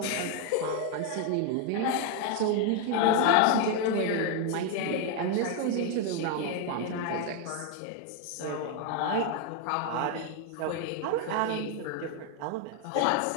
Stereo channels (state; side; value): different; both; correlation 0.01